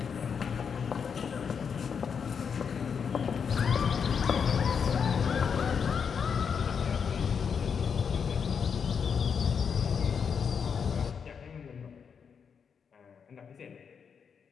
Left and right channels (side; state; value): right; quieter; 6.6 dB